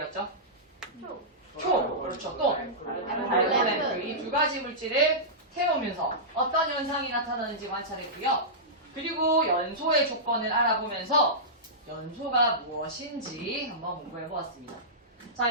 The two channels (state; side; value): normal; both; correlation -0.15